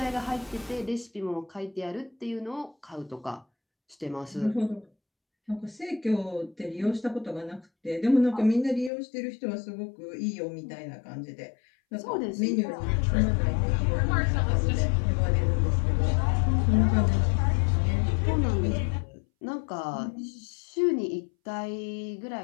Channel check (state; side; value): drops out; right; at 8.9 s